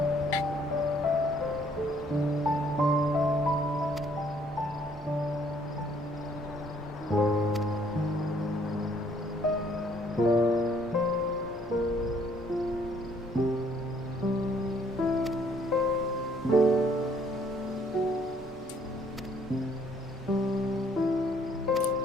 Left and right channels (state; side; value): normal; both; correlation 0.63